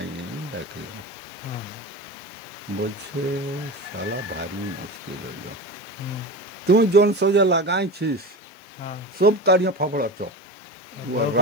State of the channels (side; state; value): both; normal; correlation 0.27